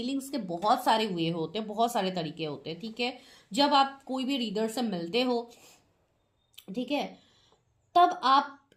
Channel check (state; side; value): identical; both; correlation 1.00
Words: के बहुत सारे वे होते हैं, बहुत सारे तरीके होते हैं, ठीक है। जब आप कोई भी रीडर से मिलते हो, ठीक है, तब आप